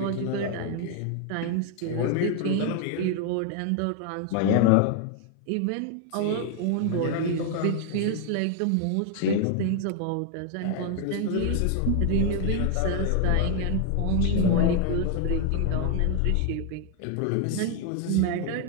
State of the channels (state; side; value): different; both; correlation 0.00